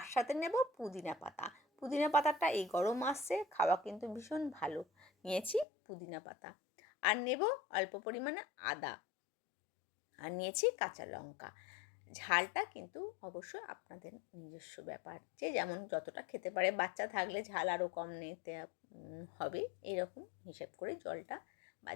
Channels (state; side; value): drops out; right; at 5.7 s